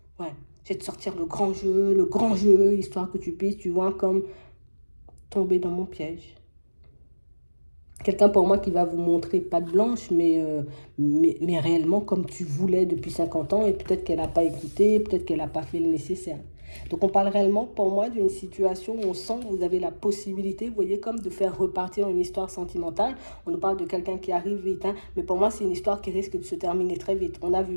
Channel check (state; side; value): inverted; both; correlation -1.00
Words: Ouais, je vais te sortir le grand jeu, histoire que tu puisses, tu vois, comme tomber dans mon piège. Quelqu'un pour moi qui va vous montrer patte blanche, mais réellement comme tu voulais depuis 50 ans, et peut-être qu'elle n'a pas écouté, peut-être qu'elle n'a pas fait le nécessaire. Donc on parle réellement pour moi d'une situation où on sent que vous avez la possibilité, vous voyez, comme de faire repartir une histoire sentimentale. On nous parle de quelqu'un qui arrive vite, hein, mais pour moi c'est une histoire qui risque de se terminer très vite. On a